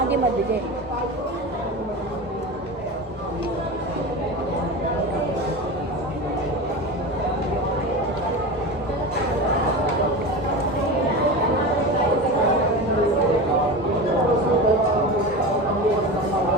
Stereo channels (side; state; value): both; normal; correlation 0.27